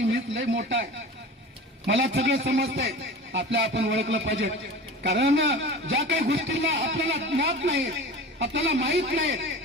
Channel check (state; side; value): normal; both; correlation 0.35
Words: मीच लय मोठा आहे, मला सगळं समजतंय. आपण ओळखलं पाहिजे, कारण ज्या काही गोष्टींना आपल्याला ज्ञात नाही, आपल्याला माहित नाही,